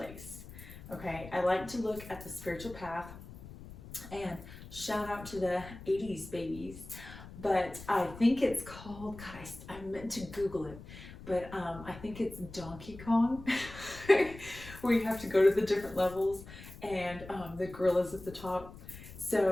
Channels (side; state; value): left; noise; rumble, 15 dB below the sound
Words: Okay, I like to look at the spiritual path, and shout out to the 80s babies, but I think it's called, God, I meant to Google it, but I think it's Donkey Kong, where you have to go to the different levels, and the gorilla's at the top.